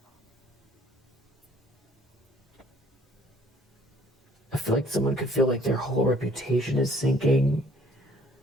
I feel like someone could feel like their whole reputation is sinking.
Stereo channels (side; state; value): both; normal; correlation 0.59